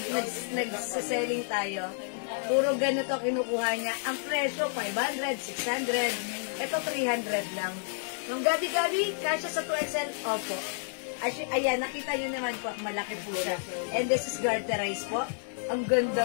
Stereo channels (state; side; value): silent; right; digital silence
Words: nag-selling tayo. Puro ganito kinukuha niya. Ang presyo, 500, 600. Ito, 300 lang. Yung gabi-gabi, kasya sa 2XL, opo. Ayan, nakita nyo naman po, malaki po siya. And this is garterized po. Ang